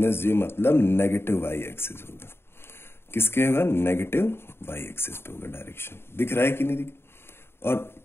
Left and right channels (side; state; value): right; late; 0.11 ms